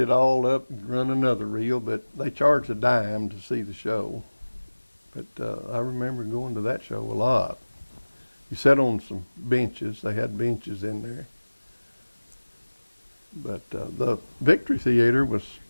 all up and run another reel, but they charged a dime to see the show. But I remember going to that show a lot. You sat on some benches. They had benches in there. But the Victory Theater was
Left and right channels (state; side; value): inverted; both; correlation -1.00